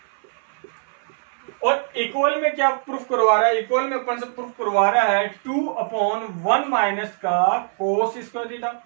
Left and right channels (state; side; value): silent; left; 60 dB below the other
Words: और equal में क्या proof करवा रहा है, equal में अपन से proof करवा रहा है 2/1 माइनस का कोस स्क्वायर थीटा